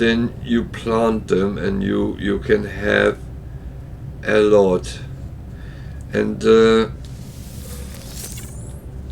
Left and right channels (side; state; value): both; identical; correlation 1.00